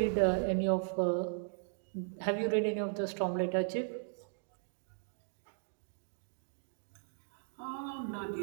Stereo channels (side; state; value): left; silent; digital silence